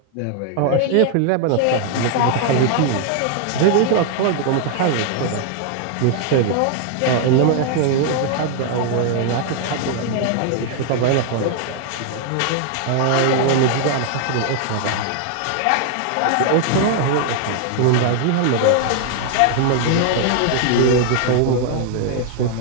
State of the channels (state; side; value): different; both; correlation 0.00